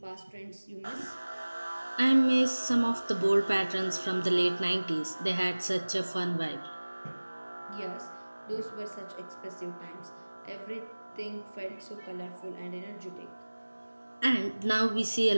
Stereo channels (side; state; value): both; inverted; correlation -1.00